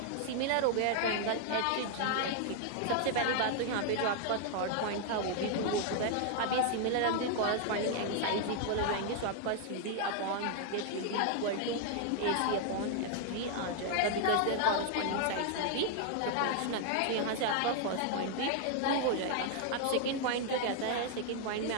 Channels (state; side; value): different; both; correlation 0.00